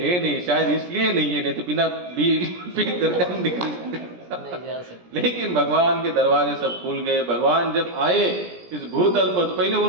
शायद इसलिए नहीं है, नहीं तो बिना बिल पे करके हम निकल। लेकिन भगवान के दरवाजे सब खुल गए। भगवान जब आए इस भूतल पर तो पहले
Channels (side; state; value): left; late; 17 ms